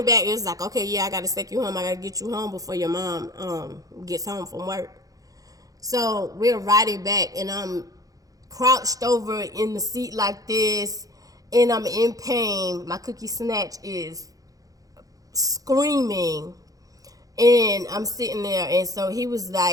back. It's like, okay, yeah, I gotta take you home. I gotta get you home before your mom gets home from work. So we're riding back, and I'm crouched over in the seat like this, and I'm in pain. My cookie snatch is screaming, and I'm sitting there. And so he was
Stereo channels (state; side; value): late; left; 0.17 ms